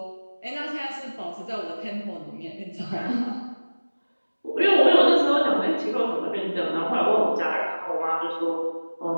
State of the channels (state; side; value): inverted; both; correlation -1.00